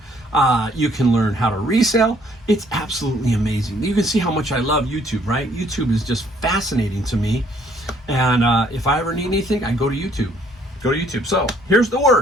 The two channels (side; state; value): both; normal; correlation 0.64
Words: You can learn how to resell. It's absolutely amazing. You can see how much I love YouTube, right? YouTube is just fascinating to me. And if I ever need anything, I go to YouTube. Go to YouTube. So here's the